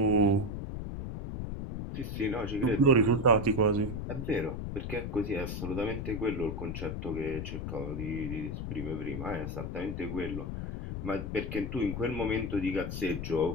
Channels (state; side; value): noise; left; rumble, 5 dB below the sound